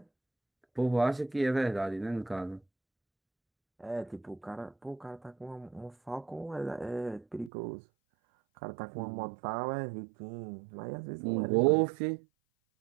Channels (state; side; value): drops out; left; at 7.5 s